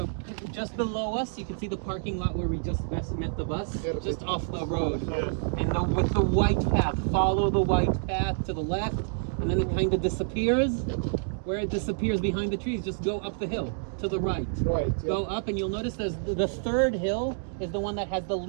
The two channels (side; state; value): left; silent; digital silence